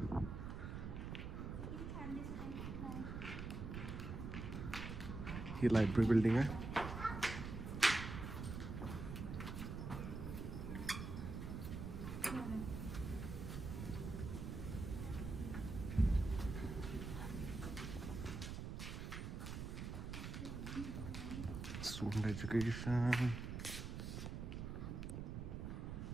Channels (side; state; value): right; noise; rumble, 5 dB below the sound